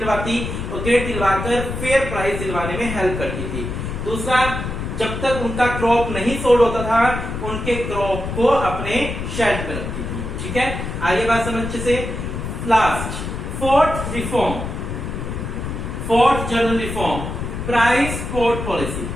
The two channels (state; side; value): noise; left; rumble, 5 dB below the sound